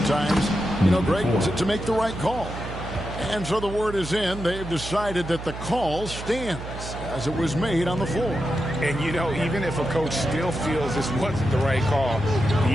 Greg, to make the right call. And so the word is in. They've decided that the call stands as it was made on the floor. And, even if a coach still feels this wasn't the right call,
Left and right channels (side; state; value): right; noise; hum, 10 dB below the sound